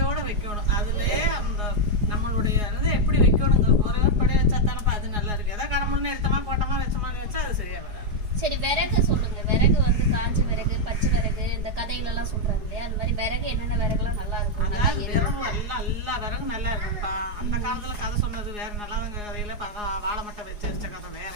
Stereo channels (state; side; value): late; left; 4.8 ms